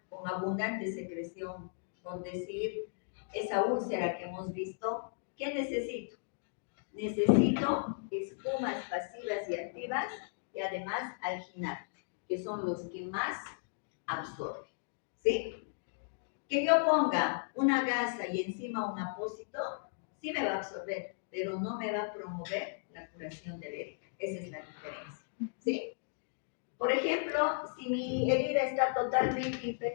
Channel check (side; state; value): right; silent; digital silence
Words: con abundante secreción, por decir, esa úlcera que hemos visto, ¿qué necesito? Necesito espumas pasivas y activas y además alginato, que son los que más absorben. ¿Sí? Que yo ponga una gasa y encima un apósito, sí me va a absorber, pero no me va a promover la curación de la herida. Esa es la diferencia. ¿Sí? Por ejemplo, si mi herida está totalmente